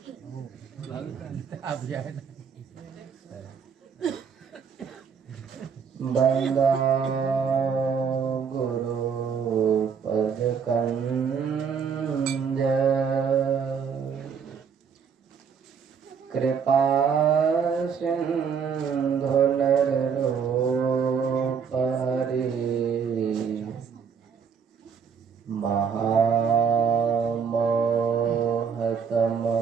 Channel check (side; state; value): left; quieter; 6.6 dB